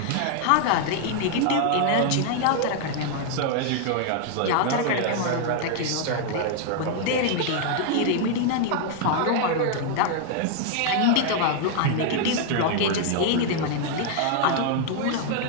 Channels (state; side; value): different; both; correlation 0.00